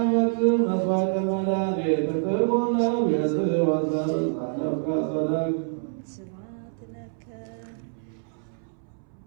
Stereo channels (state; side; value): silent; left; 61 dB below the other